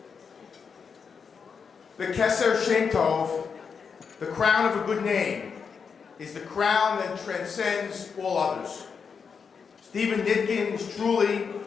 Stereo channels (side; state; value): right; quieter; 6.0 dB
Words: The Keser Shem Tov, the crown of a good name, is the crown that transcends all others. Stephen Nitkin is truly